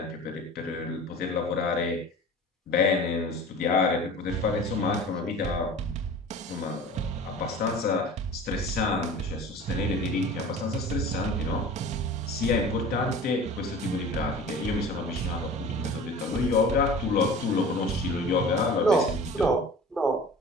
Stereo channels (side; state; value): both; normal; correlation 0.40